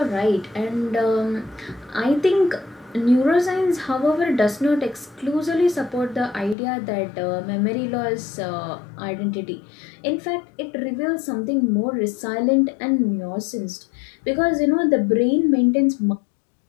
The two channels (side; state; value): right; drops out; at 6.6 s